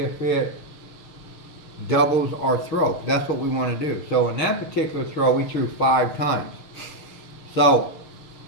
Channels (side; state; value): right; late; 6.3 ms